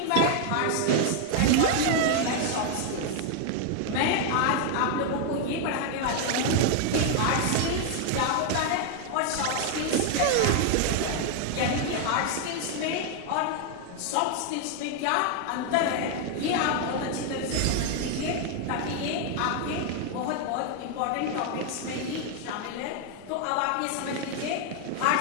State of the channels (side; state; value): both; different; correlation 0.00